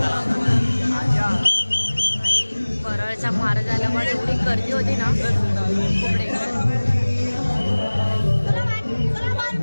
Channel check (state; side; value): inverted; both; correlation -1.00